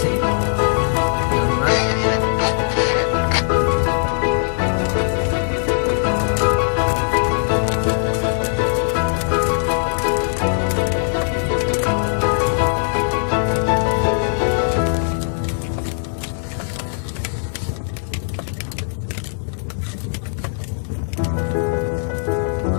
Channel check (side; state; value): right; silent; 62 dB below the other